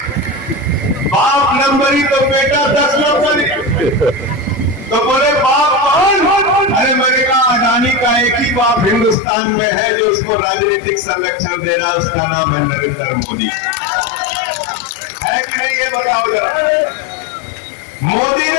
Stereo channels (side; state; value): right; drops out; at 9.2 s